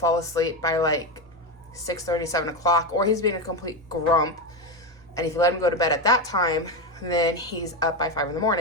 asleep by like 6:30, 7 o'clock, or he's being a complete grump. And if you let him go to bed at that time, then he's up by 5 in the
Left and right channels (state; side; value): normal; both; correlation 0.13